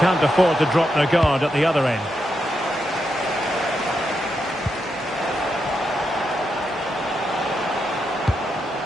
afford to drop their guard at the other end.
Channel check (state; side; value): normal; both; correlation 0.84